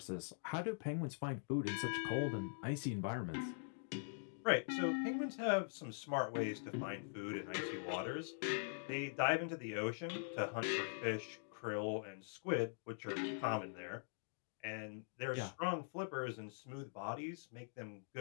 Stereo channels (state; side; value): silent; right; digital silence